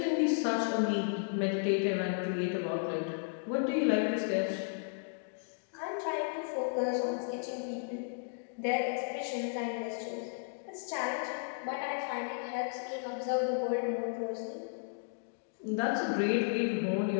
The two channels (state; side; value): silent; right; digital silence